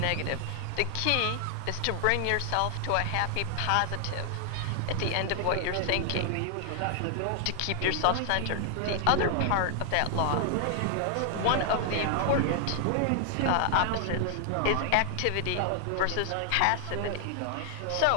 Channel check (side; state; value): both; different; correlation 0.00